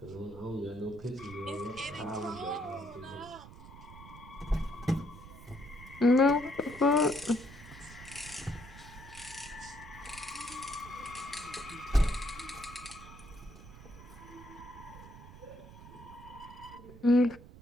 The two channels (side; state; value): right; noise; rumble, 16 dB below the sound